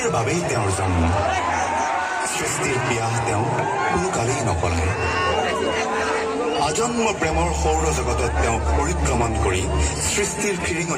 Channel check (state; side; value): identical; both; correlation 1.00